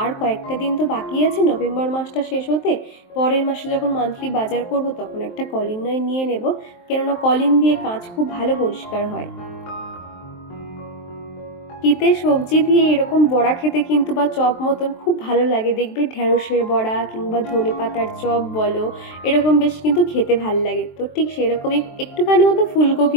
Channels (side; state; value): right; late; 23 ms